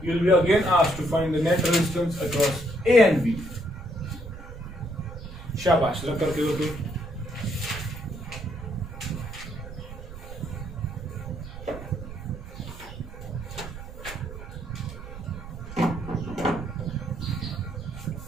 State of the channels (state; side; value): noise; right; rumble, 12 dB below the sound